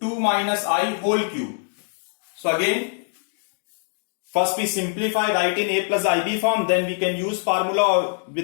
2 minus I whole cube. So again, first we simplify, write in a plus ib form, then we can use formula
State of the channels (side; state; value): right; silent; digital silence